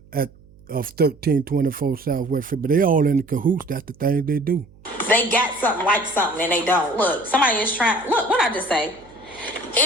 of 1324 Southwest 5th, but they all in the cahoots. That's the thing they do. They got something like something and they don't. Look, somebody is trying. Look, what I just say?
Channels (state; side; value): noise; right; hum, 26 dB below the sound